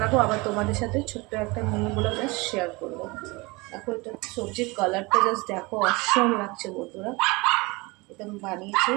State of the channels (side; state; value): left; quieter; 24.7 dB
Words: আবার তোমাদের সাথে ছোট্ট একটা মিনিগুলো জাস্ট শেয়ার করবো। দেখো, এটা সবজির কালারটা জাস্ট দেখো, অসম লাগছে বন্ধুরা। এটা আমি বানিয়েছি,